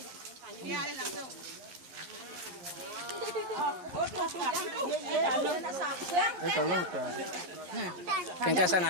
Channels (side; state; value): left; late; 11 ms